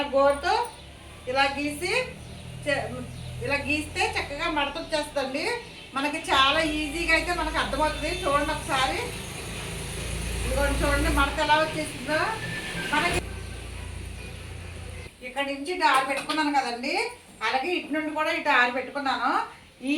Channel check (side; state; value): both; identical; correlation 1.00